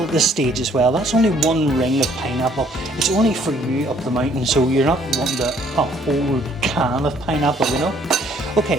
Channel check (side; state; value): both; normal; correlation 0.62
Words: at this stage as well. That's only one ring of pineapple. It's only for you up the mountain, so you're not wanting a whole can of pineapple, you know.